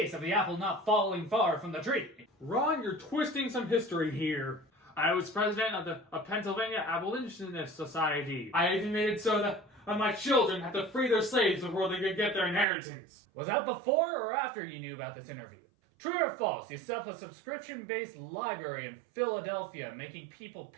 of the apple not falling far from the tree. Ron, you're twisting some history here. I was president of the Pennsylvania Abolitionist Society. I even made it so that my children had to free their slaves before they could get their inheritance. Was that before or after you knew about this interview? True or false, you set up a subscription-based library in Philadelphia, making people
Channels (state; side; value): drops out; left; at 12.7 s